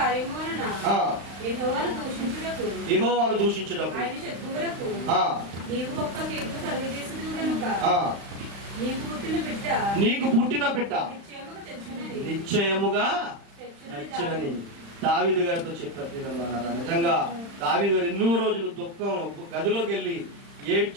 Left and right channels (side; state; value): left; late; 35 ms